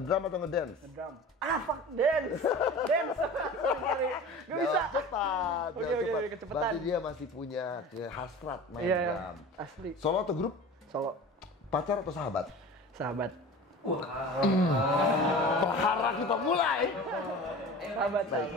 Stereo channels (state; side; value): normal; both; correlation 0.37